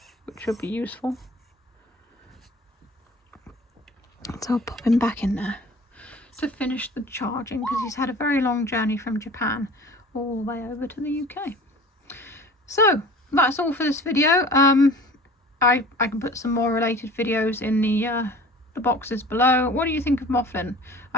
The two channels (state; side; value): normal; both; correlation 0.43